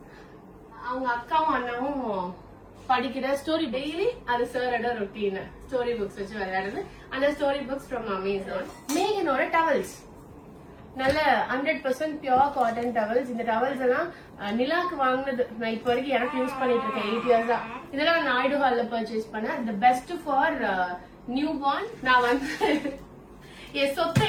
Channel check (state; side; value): identical; both; correlation 1.00